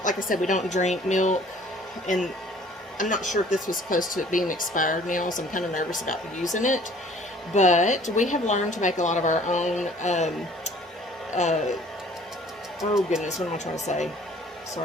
like I said, we don't drink milk, and I'm not sure if this was close to it being expired now, so I'm kind of nervous about using it. But we have learned to make a lot of our own, oh goodness, what am I trying to say?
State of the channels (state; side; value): normal; both; correlation 0.53